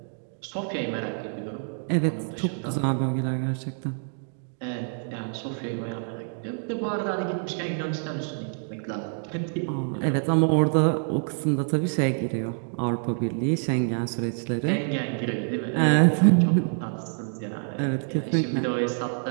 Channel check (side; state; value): left; silent; 60 dB below the other